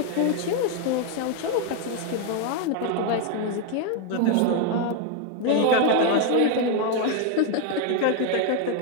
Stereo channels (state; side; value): different; both; correlation 0.01